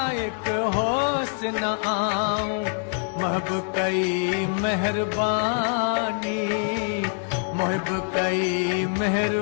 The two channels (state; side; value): silent; right; 62 dB below the other